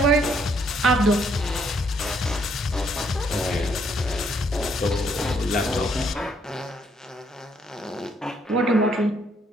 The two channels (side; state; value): both; normal; correlation 0.69